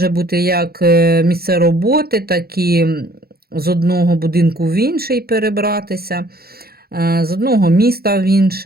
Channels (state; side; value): late; left; 0.45 ms